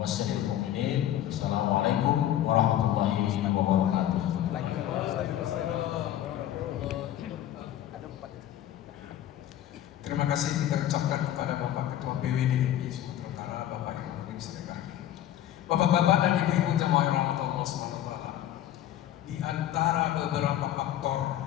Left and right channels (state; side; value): quieter; right; 12.1 dB